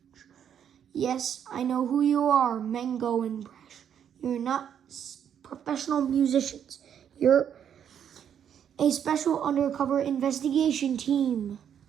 Yes, I know who you are, Mango and Brash. You're not professional musicians. You're a special undercover investigation team.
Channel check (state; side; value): quieter; left; 8.8 dB